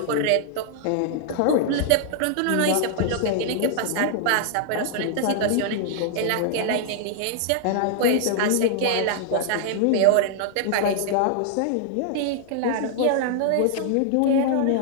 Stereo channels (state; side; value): different; both; correlation -0.01